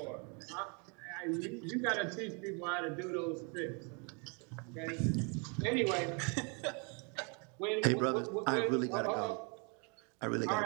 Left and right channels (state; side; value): quieter; left; 34.7 dB